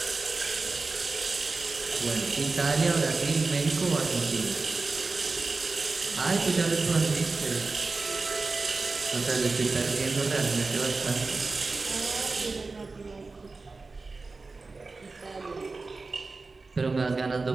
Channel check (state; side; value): quieter; left; 3.8 dB